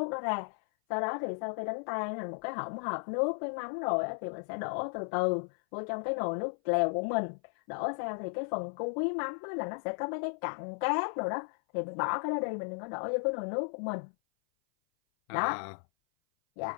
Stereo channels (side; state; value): right; silent; 55 dB below the other